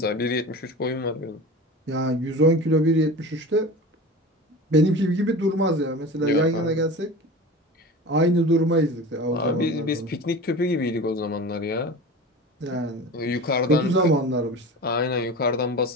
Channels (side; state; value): both; normal; correlation 0.33